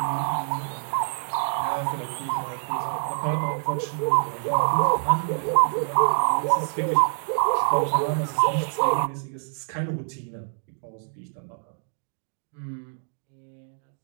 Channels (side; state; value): left; silent; digital silence